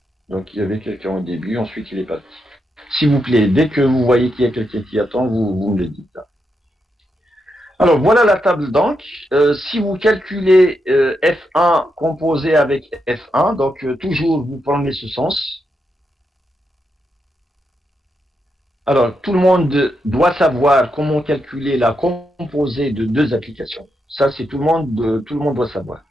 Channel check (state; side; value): normal; both; correlation 0.83